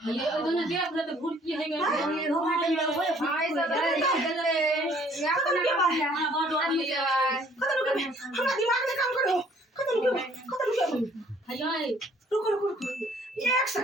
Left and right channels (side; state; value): both; normal; correlation 0.59